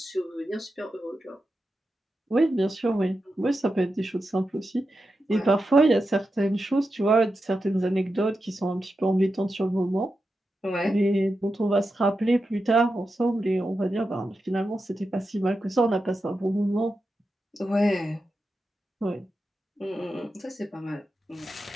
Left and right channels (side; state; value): both; normal; correlation 0.89